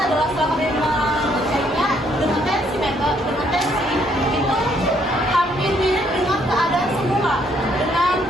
setelah kami mengeceknya dengan tensi itu hampir mirip dengan keadaan semula, dengan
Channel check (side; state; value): both; normal; correlation 0.68